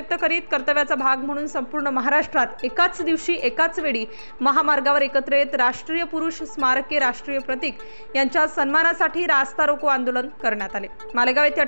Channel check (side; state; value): both; inverted; correlation -1.00